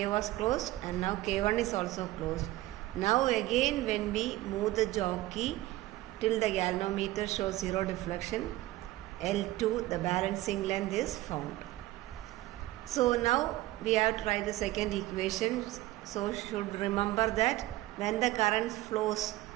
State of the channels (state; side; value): quieter; left; 17.0 dB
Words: was closed and now K1 is also closed. Now again when we move the jockey till the galvanometer shows zero deflection, L2, the balancing length is found. So now we have to write the second equation. So should remember that when the current flows